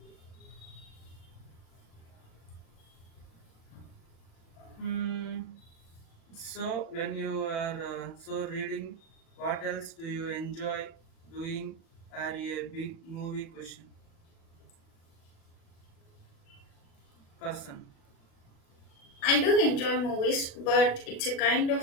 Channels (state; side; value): late; right; 36 ms